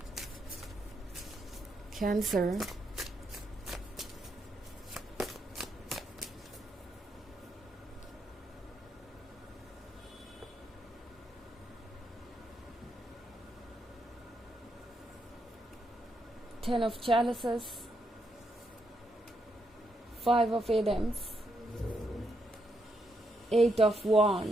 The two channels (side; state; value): both; normal; correlation 0.79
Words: cancer, 10 of chalices, 5 of Adams, 8 of